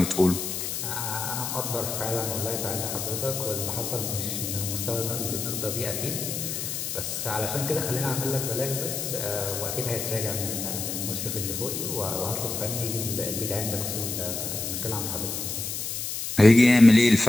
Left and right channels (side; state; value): left; noise; hiss, 4 dB below the sound